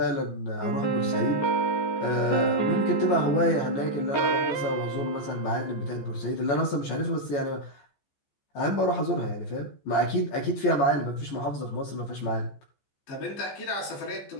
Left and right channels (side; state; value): right; late; 14 ms